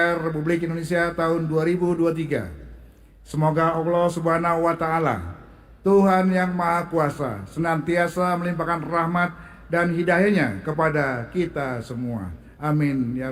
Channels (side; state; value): both; identical; correlation 1.00